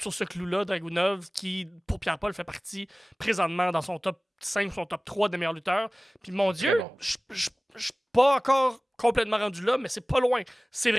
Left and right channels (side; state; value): both; normal; correlation 0.98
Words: sur ce clou-là. Dragunov, qui, pour Pierre-Paul, fait partie présentement dans son top 5, son top 3 des meilleurs lutteurs. Puis mon Dieu, Bon. je suis pas encore complètement rendu là, mais c'est pas loin. C'est